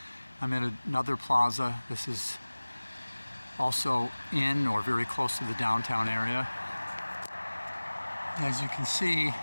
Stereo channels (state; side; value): inverted; both; correlation -1.00